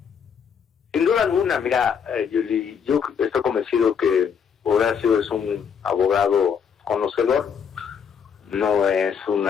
Sin duda alguna, mira, Yuli, yo estoy convencido que Horacio es un abogado conocedor, no es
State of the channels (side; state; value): right; quieter; 7.1 dB